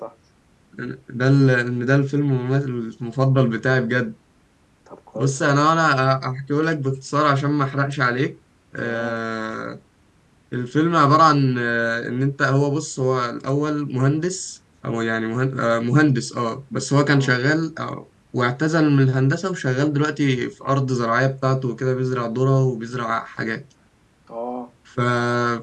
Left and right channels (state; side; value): identical; both; correlation 1.00